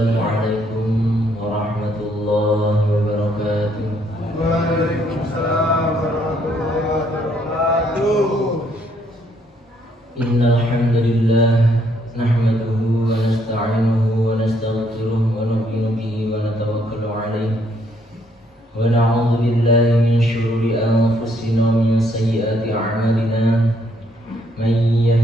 warahmatullahi wabarakatuh. Waalaikumsalam warahmatullahi wabarakatuh. Innal hamdalillah nahmaduhu wa nasta'inuhu wa nastaghfiruh wa nu'minu bihi wa natawakkalu 'alaihi wa na'udzu billahi min shururi anfusina wa min sayyiati a'malina. Man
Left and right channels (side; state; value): both; normal; correlation 0.69